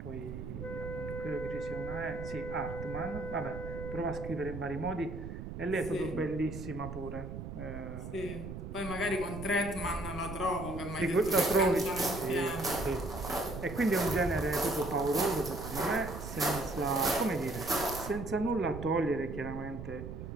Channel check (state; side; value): noise; right; rumble, 8 dB below the sound